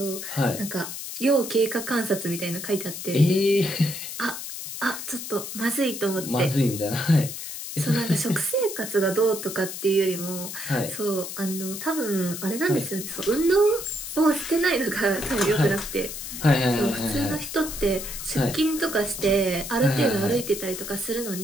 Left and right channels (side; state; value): left; noise; hiss, 8 dB below the sound